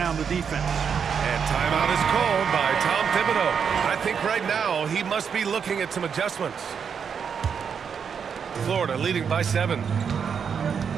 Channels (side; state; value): left; quieter; 6.9 dB